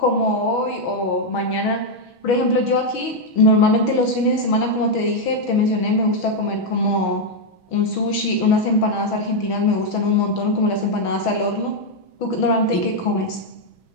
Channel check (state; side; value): late; right; 6.2 ms